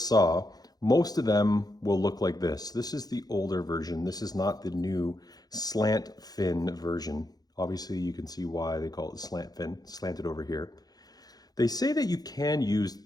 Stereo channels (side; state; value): right; late; 0.19 ms